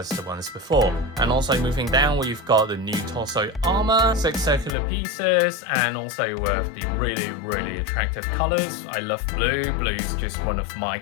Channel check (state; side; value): drops out; right; at 4.8 s